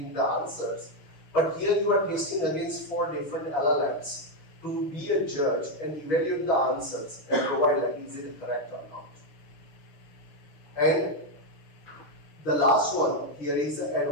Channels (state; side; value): late; right; 6.3 ms